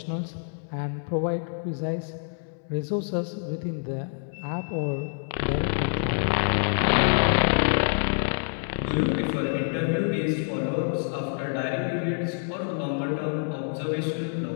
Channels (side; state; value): right; silent; 60 dB below the other